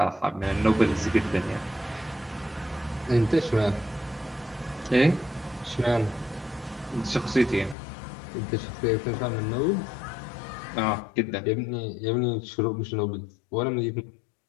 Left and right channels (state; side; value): drops out; right; at 7.8 s